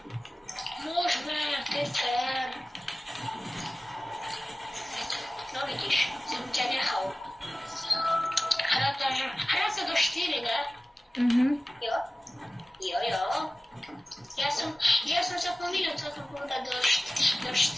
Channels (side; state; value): both; normal; correlation 0.97